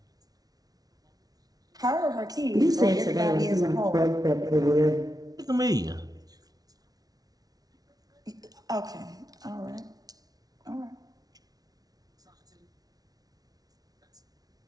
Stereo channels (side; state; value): left; late; 0.18 ms